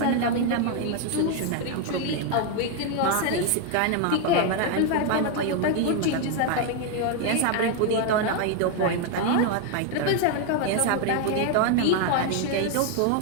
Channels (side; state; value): both; different; correlation 0.01